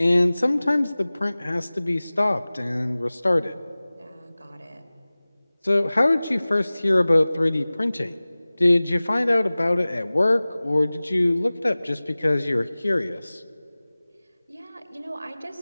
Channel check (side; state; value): both; inverted; correlation -0.99